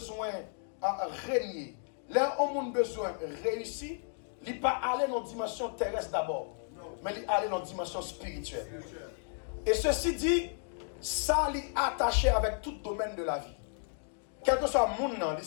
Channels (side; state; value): right; silent; 56 dB below the other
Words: de régner, là où on a besoin de réussir, il n'est pas aller dans la dimension terrestre d'abord, mais il est aller dans la dimension spirituelle. Et ceci dit, ça est attaché avec tout domaine de la vie. Quel que soit le monde,